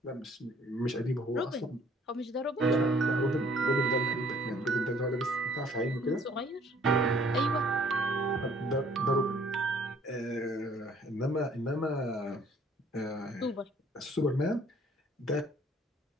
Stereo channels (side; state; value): both; normal; correlation 0.59